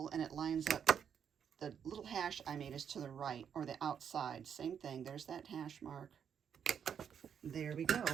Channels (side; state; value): left; quieter; 7.9 dB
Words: and it lines up. The little hash I made is to the right or the outside. Same thing. There's that hash mark. There we go.